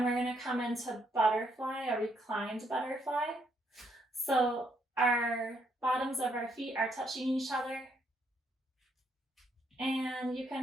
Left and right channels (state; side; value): normal; both; correlation 0.73